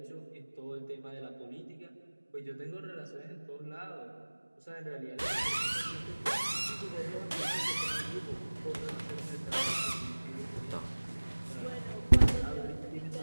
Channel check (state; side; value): inverted; both; correlation -1.00